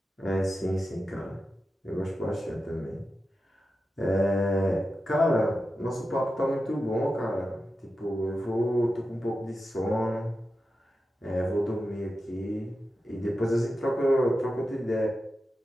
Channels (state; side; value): normal; both; correlation 0.91